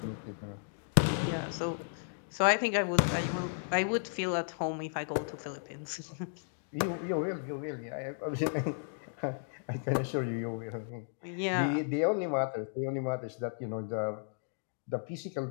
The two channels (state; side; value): silent; right; digital silence